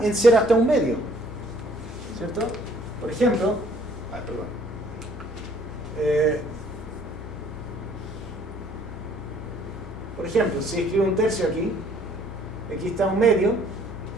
en 0 hasta un medio. ¿Cierto? Por ejemplo, si escribo un tercio aquí está un medio,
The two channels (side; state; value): left; noise; hum, 12 dB below the sound